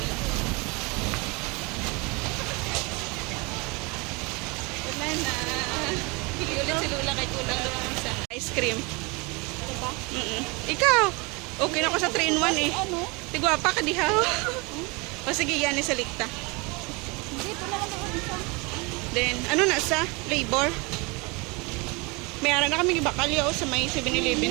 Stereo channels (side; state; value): left; quieter; 27.8 dB